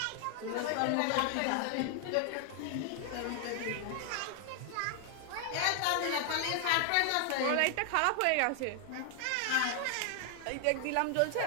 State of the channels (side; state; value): both; different; correlation 0.00